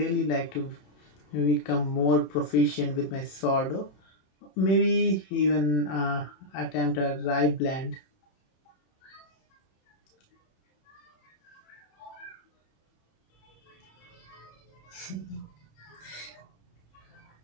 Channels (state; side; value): late; right; 27 ms